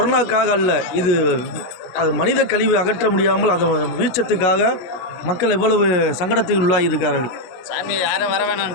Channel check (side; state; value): right; late; 16 ms